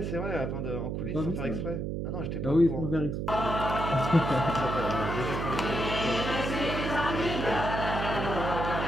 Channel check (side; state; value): right; noise; hum, 3 dB below the sound